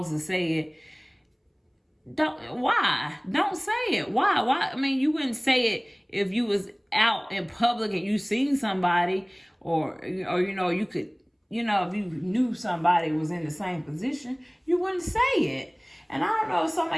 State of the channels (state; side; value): identical; both; correlation 1.00